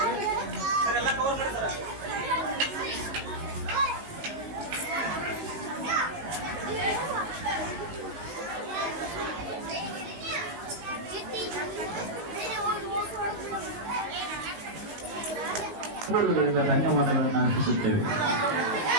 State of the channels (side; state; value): left; late; 19 ms